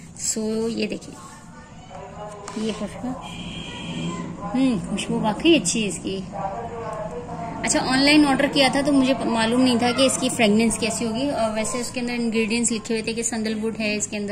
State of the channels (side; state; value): both; identical; correlation 1.00